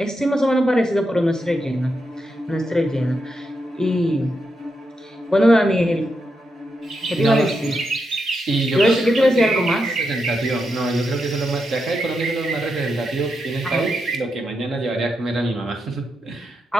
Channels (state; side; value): normal; both; correlation 0.84